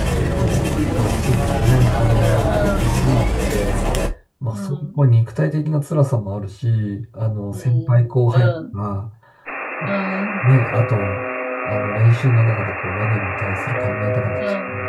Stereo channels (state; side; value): identical; both; correlation 1.00